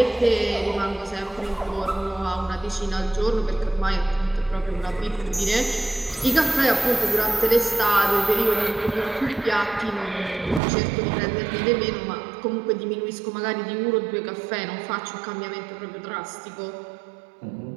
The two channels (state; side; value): drops out; left; at 10.6 s